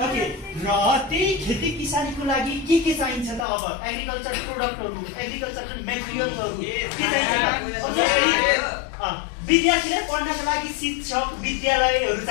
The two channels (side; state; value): right; drops out; at 3.5 s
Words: ओके र त्यही खेती किसानीको लागि के चाहिन्छ त? अब एग्रिकल्चर प्रोडक्टहरु एग्रिकल्चरल मेटेरियल्सहरु के चाहिन्छ? विद्यार्थीले पढ्नको लागि शिक्षक विद्यालयहरु